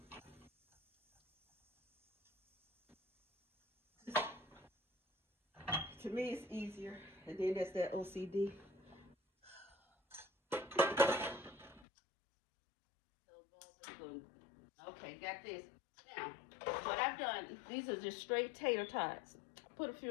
To me, it's easier, and then that's that OCD. Okay, got this. Now, what I've done, these are just straight tater tots. I put a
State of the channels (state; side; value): drops out; right; at 11.9 s